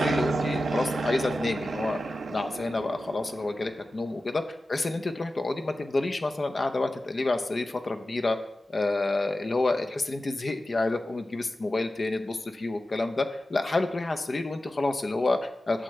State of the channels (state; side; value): normal; both; correlation 0.94